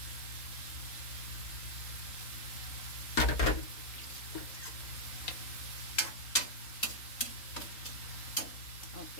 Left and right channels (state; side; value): late; right; 3.9 ms